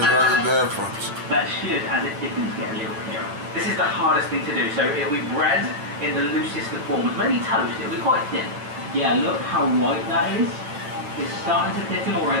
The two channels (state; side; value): late; left; 9.0 ms